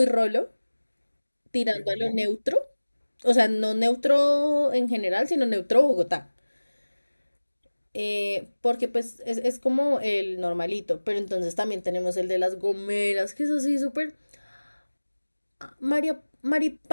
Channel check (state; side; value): inverted; both; correlation -1.00